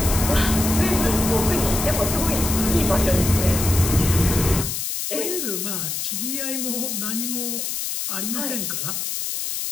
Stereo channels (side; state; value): left; noise; hiss, 3 dB below the sound